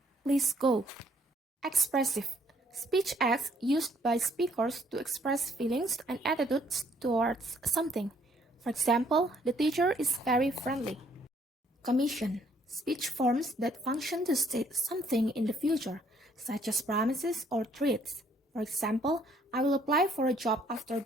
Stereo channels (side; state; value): both; normal; correlation 0.65